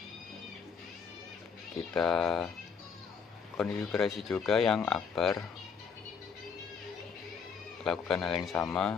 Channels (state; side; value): quieter; right; 6.1 dB